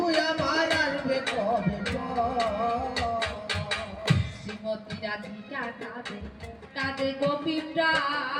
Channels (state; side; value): identical; both; correlation 1.00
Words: আমার আসবে কবে শ্রীমতী রাধিকা কাঁদে কাঁদে গোপী